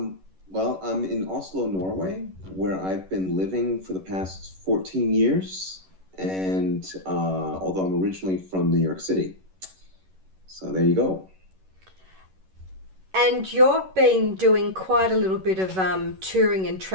Well, I'm in Oslo, Norway, where I've been living for the past 14 years, and although I'm originally from New York City. So there you go. And you've been doing quite a little bit of touring and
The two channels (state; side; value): late; left; 11 ms